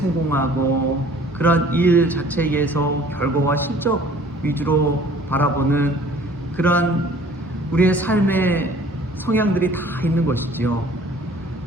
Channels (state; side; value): normal; both; correlation 0.52